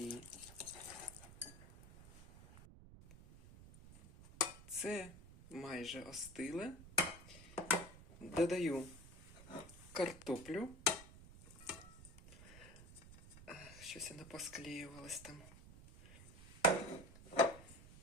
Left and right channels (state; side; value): noise; right; rumble, 17 dB below the sound